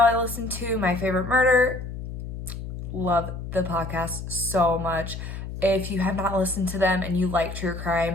listen to My Favorite Murder. Love the podcast so much. If you have not listened to them and you like true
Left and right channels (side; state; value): left; noise; hum, 8 dB below the sound